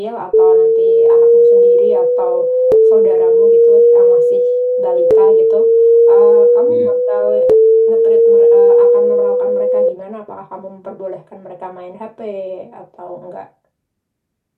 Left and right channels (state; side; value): identical; both; correlation 1.00